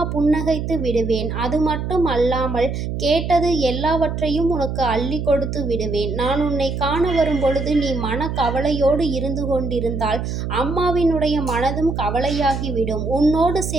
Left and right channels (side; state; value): right; noise; hum, 4 dB below the sound